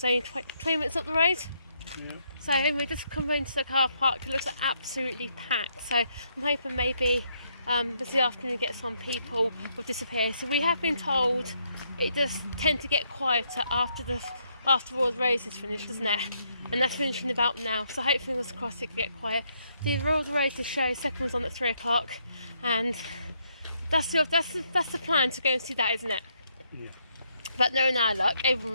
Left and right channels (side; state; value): both; inverted; correlation -0.74